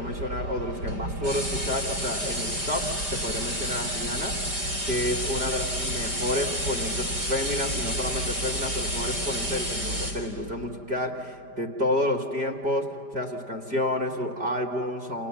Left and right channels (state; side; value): late; left; 5.0 ms